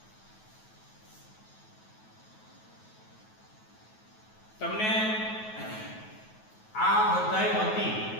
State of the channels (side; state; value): right; late; 9.3 ms